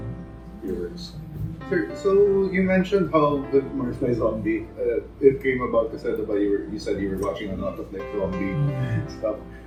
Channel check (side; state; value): both; identical; correlation 1.00